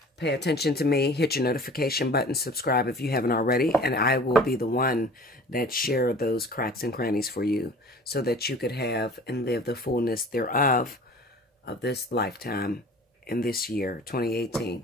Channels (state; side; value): normal; both; correlation 0.45